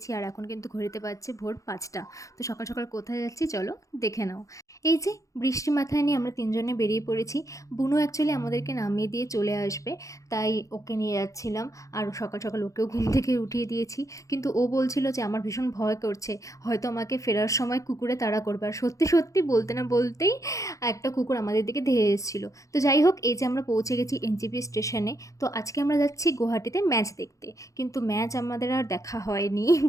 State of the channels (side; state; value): right; late; 0.16 ms